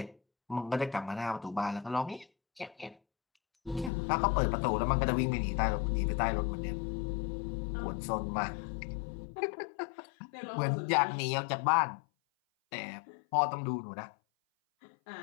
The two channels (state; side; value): drops out; right; at 3.9 s